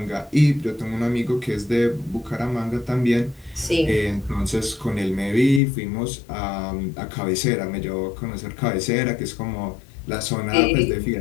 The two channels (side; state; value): right; drops out; at 5.6 s